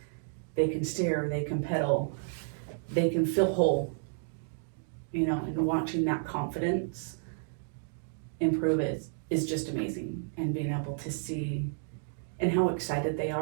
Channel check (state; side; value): silent; left; digital silence